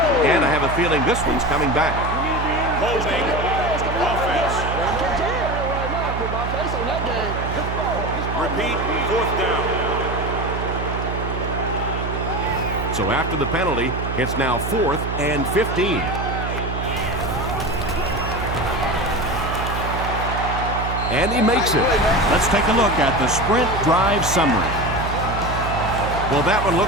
And I have a feeling this one's coming back. Holding offense. Repeat, 4th down. So after the penalty, it's now 4th and 15. And he makes it. Let's take a look at the sprint drive summary. Well, that one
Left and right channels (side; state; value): right; noise; hum, 4 dB below the sound